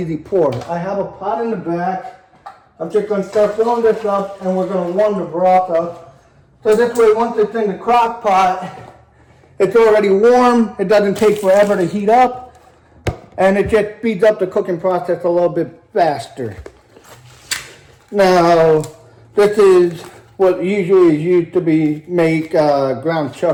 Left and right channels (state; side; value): identical; both; correlation 1.00